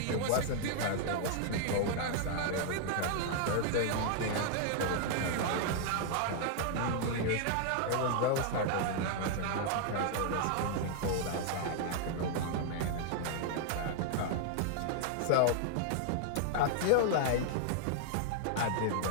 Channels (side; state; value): both; different; correlation 0.00